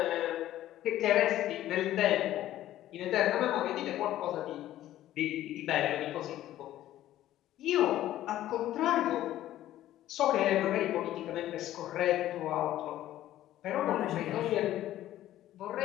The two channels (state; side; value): quieter; right; 13.5 dB